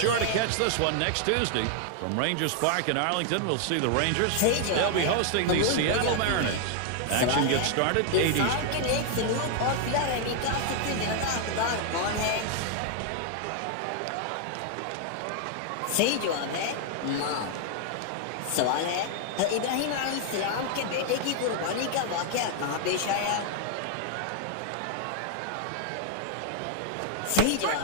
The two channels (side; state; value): both; different; correlation 0.00